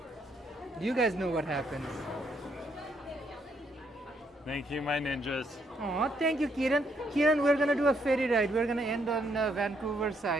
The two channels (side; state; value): both; normal; correlation 0.73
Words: You guys know what happens. Thank you, my ninjas. Oh, thank you, Kieran. Kieran, we're gonna do a ferry ride. We're gonna end on Vancouver